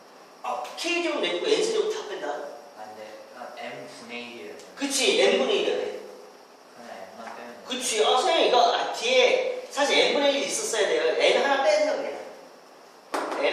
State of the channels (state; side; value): identical; both; correlation 1.00